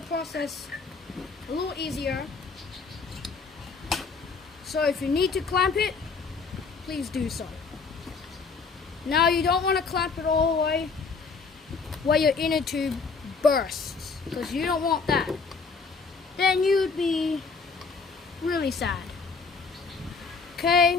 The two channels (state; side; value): quieter; right; 4.8 dB